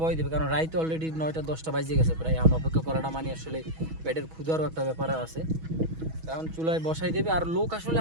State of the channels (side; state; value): left; late; 6.2 ms